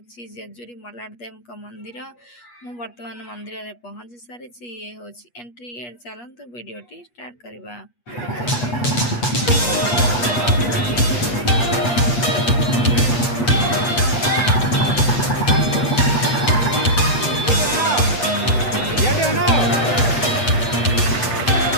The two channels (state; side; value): late; right; 8.3 ms